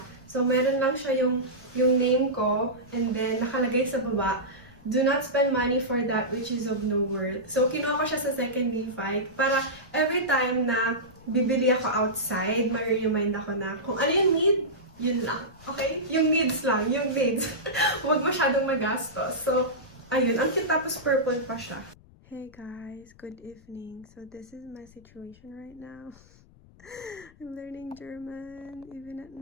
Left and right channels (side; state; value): left; noise; rumble, 26 dB below the sound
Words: So, meron lang siya yung name ko. And then, nakalagay sa baba, do not spend money for that which is of no worth. So, kinuha ko siya sa second Levi para every time na bibili ako outside, ma-remind ako na kung ano yung need, yun lang. Okay? Yung needs lang. Yung needs. Huwag masyadong magastos. So, ayun. Ang cute tapos purple pa siya. Hey guys. Good evening. So, this is my situation right now. I'm learning German even at